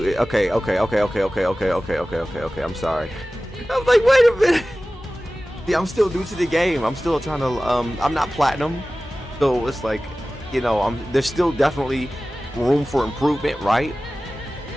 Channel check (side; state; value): both; normal; correlation 0.96